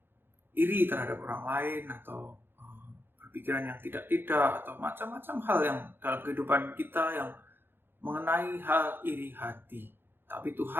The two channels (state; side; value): late; left; 0.10 ms